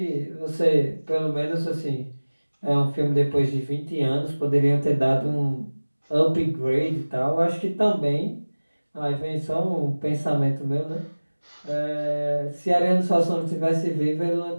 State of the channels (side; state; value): both; inverted; correlation -1.00